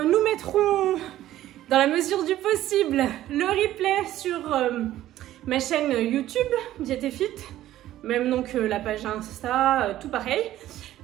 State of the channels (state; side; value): quieter; left; 13.7 dB